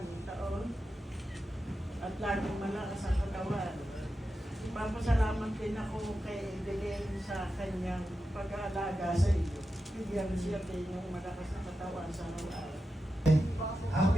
taon at laging malakas ang katawan. Papasalamat din ako kay Evelyn sa kanyang pag-aalaga sa iyo. Bigyan siya din yung malakas na katawan sa araw-araw.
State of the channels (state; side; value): normal; both; correlation 0.90